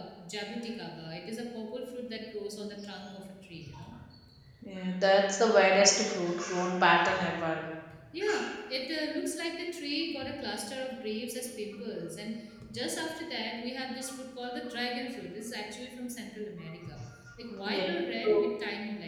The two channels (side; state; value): both; identical; correlation 1.00